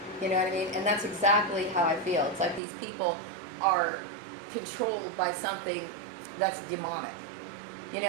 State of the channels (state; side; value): drops out; left; at 2.6 s